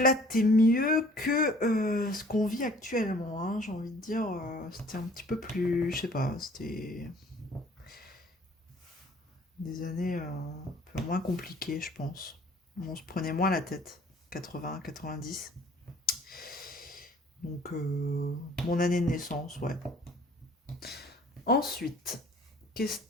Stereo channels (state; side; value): normal; both; correlation 0.54